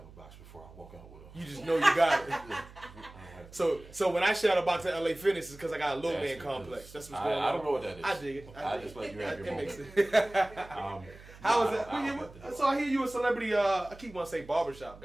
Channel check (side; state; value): right; noise; hum, 19 dB below the sound